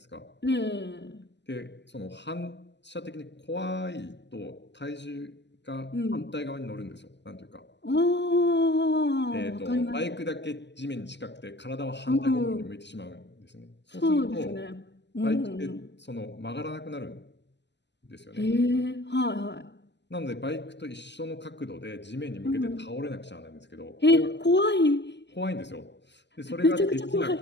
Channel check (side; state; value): right; late; 0.51 ms